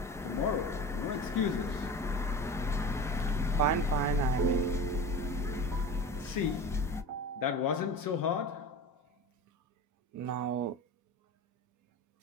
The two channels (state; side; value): normal; both; correlation 0.33